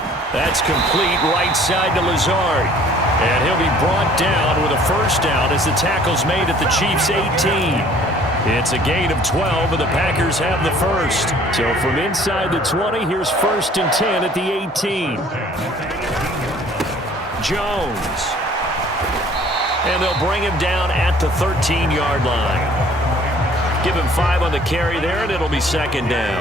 That's complete right side to Lazard. And he'll be brought down with a first down as the tackle's made at the Chiefs' 18. It's a gain of 12, and the Packers have the first. So from inside the 20, here's 1st and 10 at the 18. Jones. And they'll bring him down at the 13-yard line. Give him 5 on the carry there, and it'll be 2nd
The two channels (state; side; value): normal; both; correlation 0.54